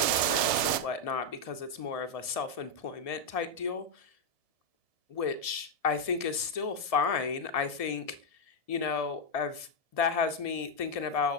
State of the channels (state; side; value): late; right; 1.7 ms